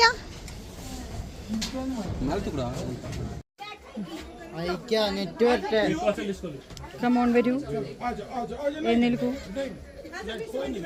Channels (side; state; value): both; identical; correlation 1.00